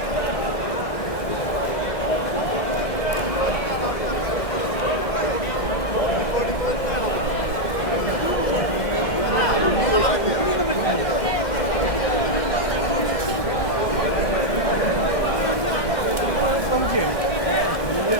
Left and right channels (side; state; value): right; late; 1.6 ms